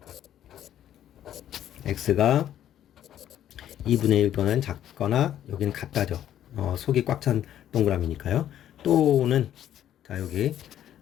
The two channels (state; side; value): quieter; right; 11.2 dB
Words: x가 2분의 1보다는 작거나 여기는 같다죠. 속이 꽉 찬 동그라미니까요. 또는 자, 여기